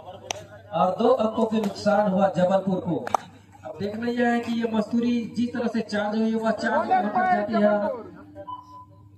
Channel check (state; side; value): identical; both; correlation 1.00